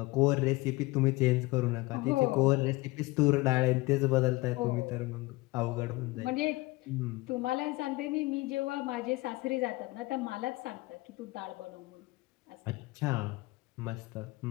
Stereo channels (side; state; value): right; quieter; 21.9 dB